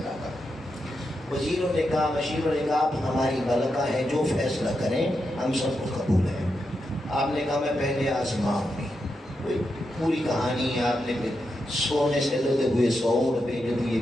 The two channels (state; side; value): normal; both; correlation 0.86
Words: کا۔ وزیروں نے کہا، مشیروں نے کہا آپ ہماری ملکہ ہیں، جو فیصلہ کریں ہم سب کو قبول ہے۔ آپ نے کہا میں پہلے آزماؤں گی، پوری کہانی ہے، آپ نے سونے سے لگے ہوئے سوڑ بھیج دیے،